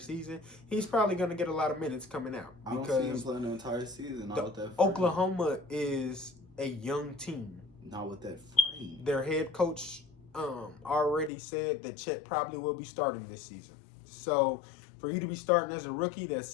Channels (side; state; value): right; drops out; at 11.3 s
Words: He's probably going to get a lot of minutes coming out. I don't see him playing the entire season. Not with that frame. Oklahoma is a young team. Not with that frame. Their head coach already said that Chet probably will be starting this season. So for you to be starting as a rookie,